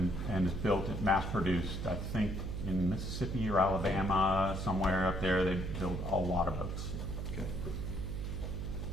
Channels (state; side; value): noise; right; hum, 4 dB below the sound